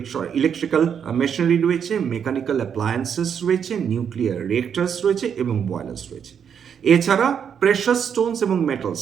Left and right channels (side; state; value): left; quieter; 7.7 dB